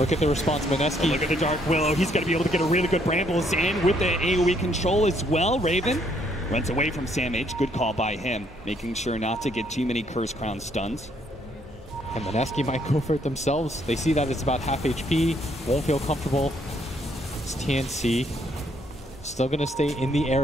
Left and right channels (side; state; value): both; normal; correlation 0.69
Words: at the response, Mineski. Look at the Dark Willow. He's going to be able to get a really good Brambles in with the AoE control as well. Raven runs away from Sam H. Good call by him, making sure not to get too many Curse Crown stuns. And Mineski might go for it themselves. They see that it's about half HP, won't feel comfortable. It's TNC. Still going to stay in the